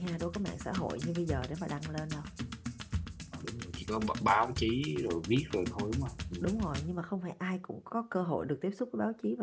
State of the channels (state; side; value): identical; both; correlation 1.00